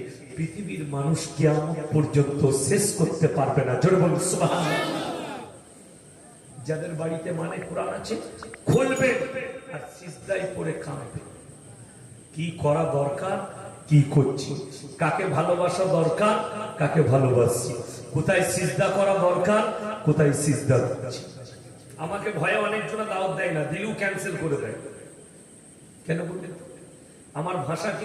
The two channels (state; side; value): identical; both; correlation 1.00